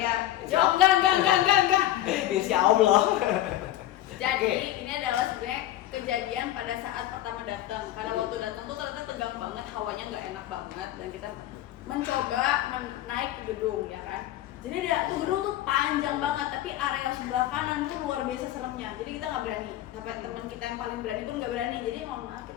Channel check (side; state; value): right; quieter; 13.7 dB